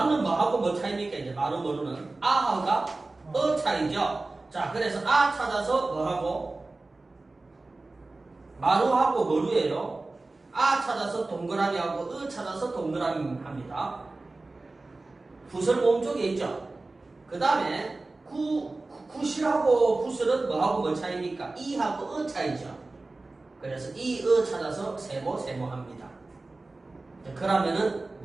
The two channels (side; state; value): left; quieter; 3.2 dB